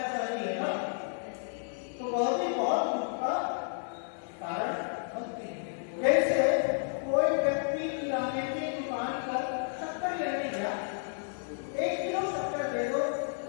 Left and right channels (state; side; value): silent; right; 57 dB below the other